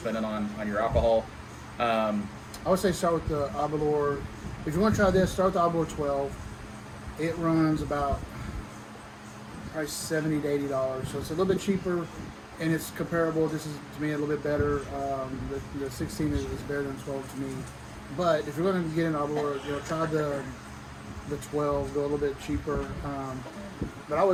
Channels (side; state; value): both; identical; correlation 1.00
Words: on your alcohol. I would say start with the Aberlour. If you want to try this, start with the Aberlour 12. It runs about probably $70 to $80, so it's a little bit cheaper, and it's comparable. This is to me a little bit better. The 16 is better than 12 to me. But if you're going to get an Aberlour, try the 12. Go a little bit cheaper. But I